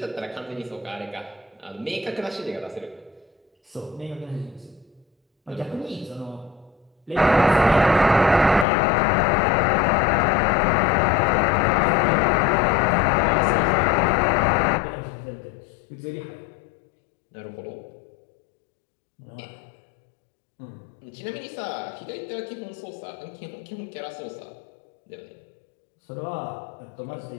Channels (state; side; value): drops out; right; at 8.7 s